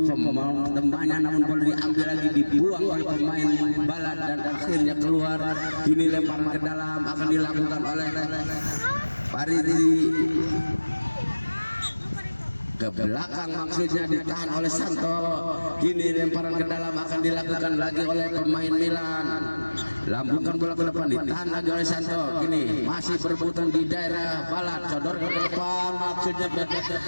temannya, namun bola diambil lagi, dibuang oleh pemain Balat dan akhirnya keluar. Ini lemparan ke dalam akan dilakukan oleh Paridi. Ke belakang maksudnya, ditahan oleh Santo. Kini lemparan ke dalam akan dilakukan lagi oleh pemain Milan. lambungkan bola ke depan, ditahan lagi oleh Santo. Kini masih berebutan di daerah balat, sodorkan ke depan, maksudnya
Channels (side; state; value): both; inverted; correlation -1.00